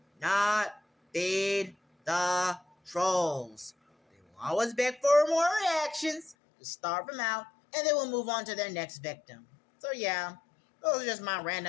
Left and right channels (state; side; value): drops out; right; at 6.4 s